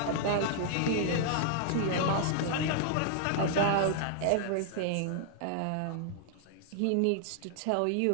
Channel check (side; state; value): both; different; correlation -0.01